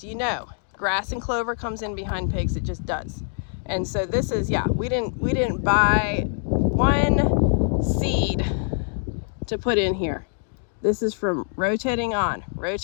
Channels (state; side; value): silent; right; 62 dB below the other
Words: you know grass and clover comes in behind pigs. It just does. And so this is, yeah, we didn't buy one seed to put in here. This is from rotating on,